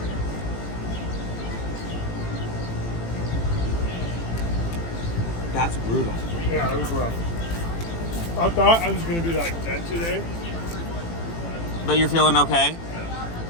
That's brutal. Yeah, it was rough. I thought I was going to be, like, dead today. But you're feeling okay?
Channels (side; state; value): right; late; 18 ms